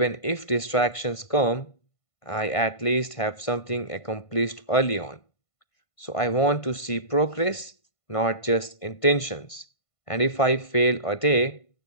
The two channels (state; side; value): late; right; 1.5 ms